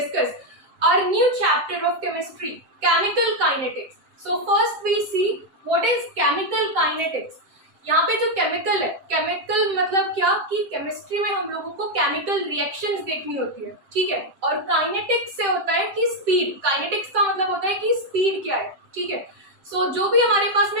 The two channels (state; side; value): late; left; 7.6 ms